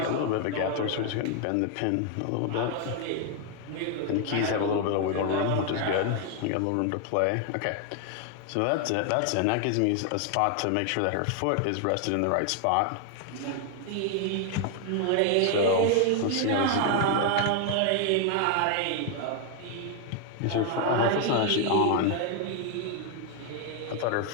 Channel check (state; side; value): different; both; correlation 0.00